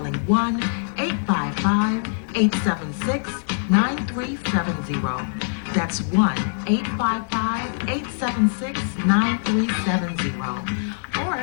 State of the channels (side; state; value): right; silent; 60 dB below the other